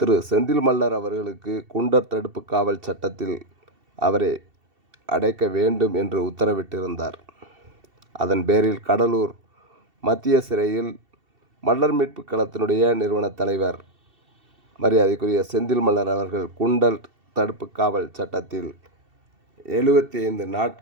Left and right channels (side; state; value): left; late; 2.7 ms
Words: செந்தில் மல்லர் அவர்களுக்கு குண்டர் தடுப்பு காவல் சட்டத்தில் அவரை அடைக்க வேண்டும் என்று உத்தரவிட்டிருந்தார். அதன் பேரில் கடலூர் மத்திய சிறையில் மல்லர் மீட்பு களத்தினுடைய நிறுவன தலைவர் மரியாதைக்குரிய செந்தில் மல்லர் அவர்கள் குண்டர் தடுப்பு காவல் சட்டத்தில் 75